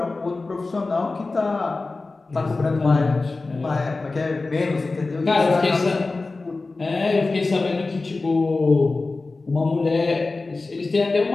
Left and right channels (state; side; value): quieter; right; 3.5 dB